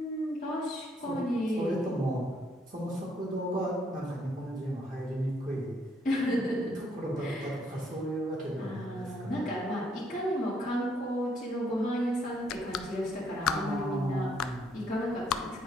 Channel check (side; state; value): both; normal; correlation 0.70